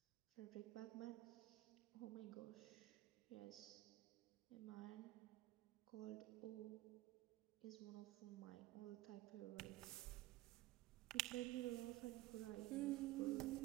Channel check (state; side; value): quieter; left; 16.9 dB